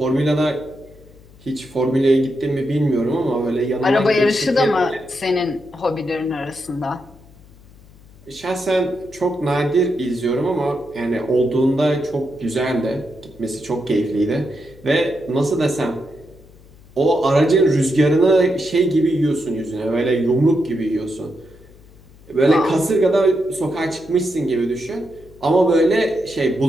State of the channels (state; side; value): noise; left; hum, 24 dB below the sound